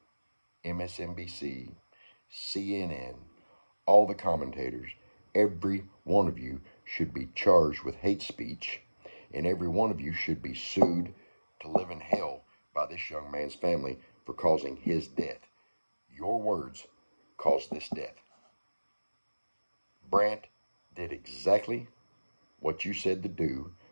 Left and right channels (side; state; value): both; inverted; correlation -1.00